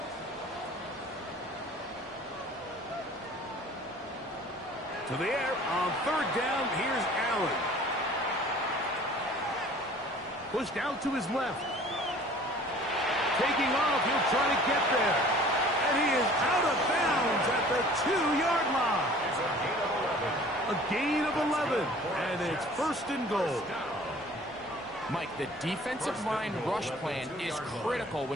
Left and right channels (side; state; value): both; normal; correlation 0.49